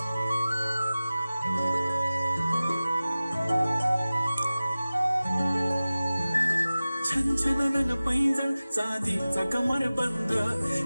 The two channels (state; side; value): inverted; both; correlation -0.97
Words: छनछनन पैंजण चांदीचा कमर बंद,